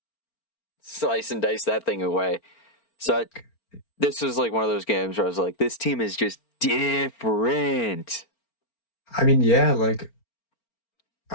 slice and dice that thing away. So this was like one of those games where I was like, this team is just different. I mean, yeah, like,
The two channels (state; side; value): late; right; 4.4 ms